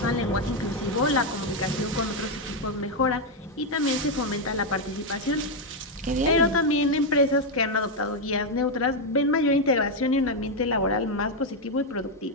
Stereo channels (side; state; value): both; normal; correlation 0.03